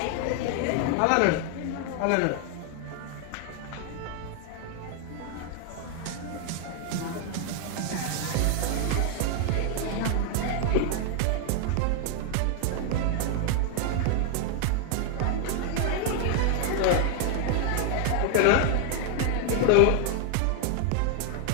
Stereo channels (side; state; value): both; different; correlation 0.00